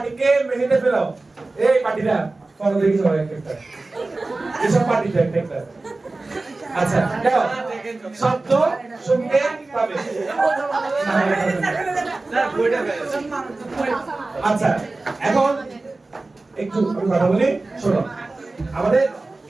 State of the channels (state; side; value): quieter; left; 3.3 dB